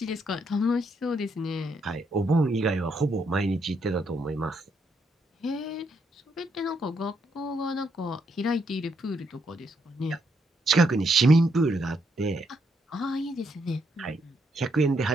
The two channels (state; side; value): normal; both; correlation 0.76